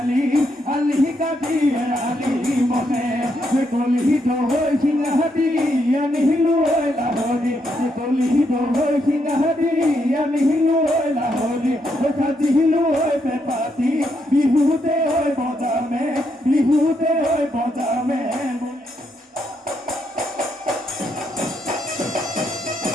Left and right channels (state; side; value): normal; both; correlation 0.78